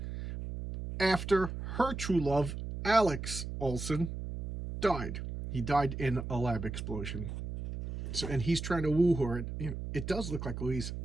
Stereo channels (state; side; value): noise; right; hum, 6 dB below the sound